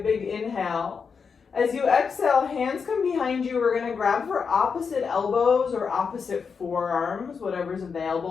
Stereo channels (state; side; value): quieter; right; 5.8 dB